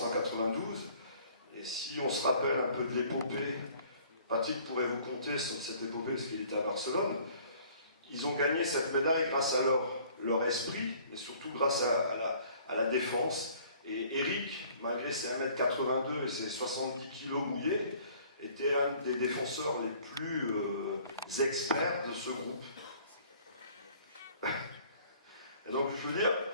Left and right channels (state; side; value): inverted; both; correlation -0.55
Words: en 92. Et si on se rappelle un peu de l'épopée, Patrick pourrait vous conter sur cette épopée parce qu'il était à Barcelone, ils ont gagné cette médaille grâce à leur esprit, mais surtout grâce à la défense. Et Eric, malgré ses 1m82 et ses 70 kg mouillés, était un des défenseurs les plus experts de ce groupe. Et donc, je veux dire,